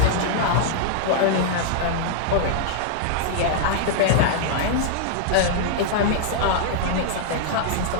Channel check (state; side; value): different; both; correlation -0.01